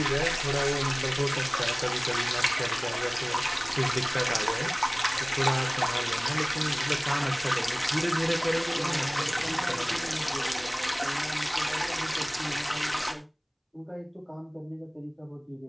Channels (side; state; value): both; identical; correlation 1.00